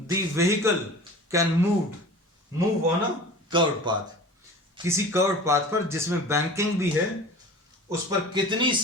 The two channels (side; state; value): both; normal; correlation 0.39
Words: vehicle can move on a curved path. किसी curved path पर जिसमें banking भी है, उस पर कितनी